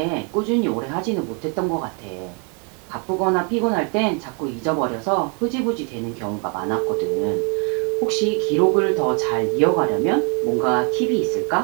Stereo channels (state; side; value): quieter; left; 36.6 dB